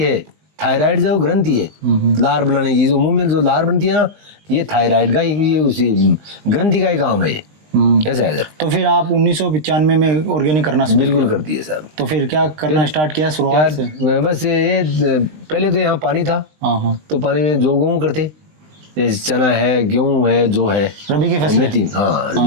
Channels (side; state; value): left; late; 20 ms